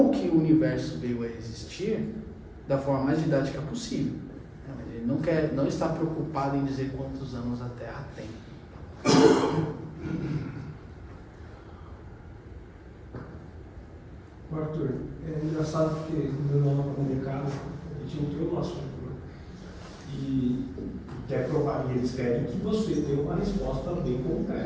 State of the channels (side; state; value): both; identical; correlation 1.00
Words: que o universo veio a existir da forma mais didática possível. Ele não está preocupado em dizer quantos anos a Terra tem. Arthur, é engraçado porque no meu nome comunicado a gente entrou no assunto, né? E quer provar, e eles querem que você dê uma resposta bem